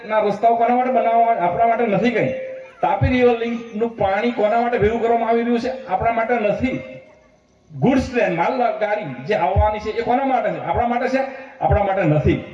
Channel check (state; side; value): identical; both; correlation 1.00